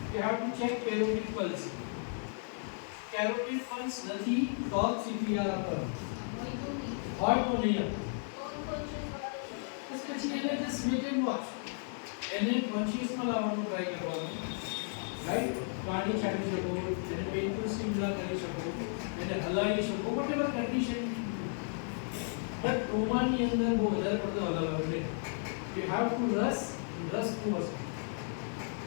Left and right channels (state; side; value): silent; right; 55 dB below the other